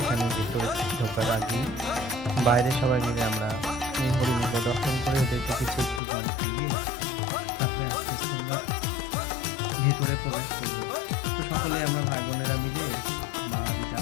এখানে ভিতরে ঢোকার আগে বাইরে সবাই মিলে আমরা এই হরিণগুলো দর্শন করে ওদেরকে কিছু একটু কম খাইয়ে তারপরে আস্তে আস্তে আমরা ভেতরে প্রবেশ করব। তো সকলে আমরা ভাই বোনেরা মিলে, মা দিদা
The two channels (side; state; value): right; drops out; at 6.0 s